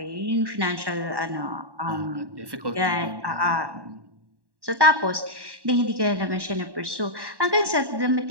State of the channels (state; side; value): late; left; 1.1 ms